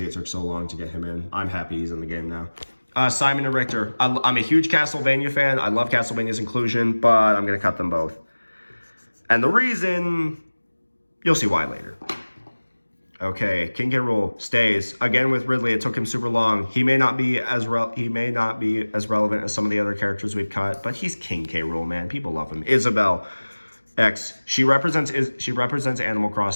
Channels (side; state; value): both; inverted; correlation -1.00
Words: it took so long to get him in. I'm happy he's in the game now. Simon and Richter. I'm a huge Castlevania fan. I love Castlevania's inclusion, but I'm going to cut them both. And the reason, you'll see why later. Okay, King K. Rool stays again with Ridley. It took him super long. He may not be as relevant as some of the other characters we've cut, but he's King K. Rool, man. People love him. Isabelle X. She represents Animal